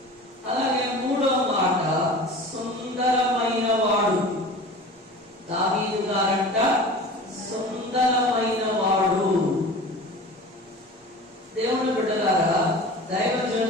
అలాగే మూడో మాట, సుందరమైన వాడు. దావీదు గారంట సుందరమైన వాడు. దేవుని బిడ్డలారా,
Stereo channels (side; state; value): both; normal; correlation 0.37